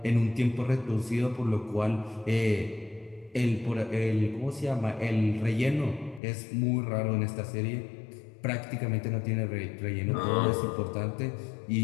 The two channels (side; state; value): right; drops out; at 6.2 s